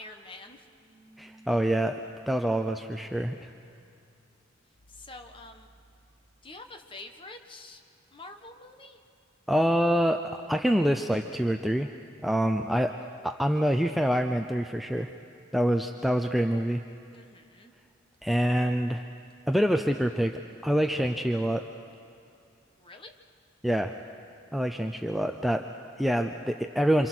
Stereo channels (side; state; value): both; normal; correlation 0.92